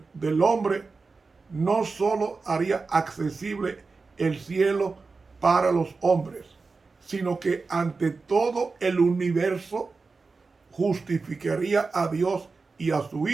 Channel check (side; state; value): left; quieter; 4.2 dB